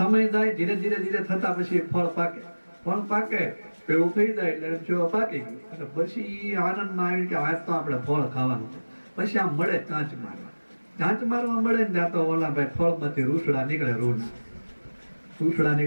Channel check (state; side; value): inverted; both; correlation -1.00